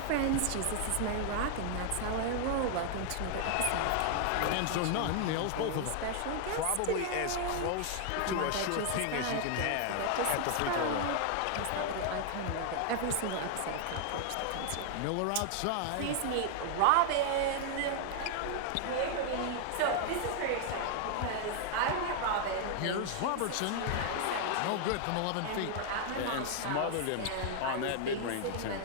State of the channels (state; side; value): different; both; correlation 0.00